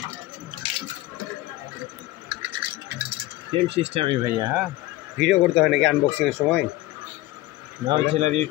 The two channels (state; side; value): quieter; right; 17.7 dB